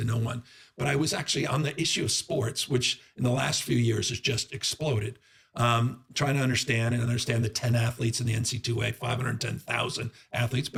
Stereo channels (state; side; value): identical; both; correlation 1.00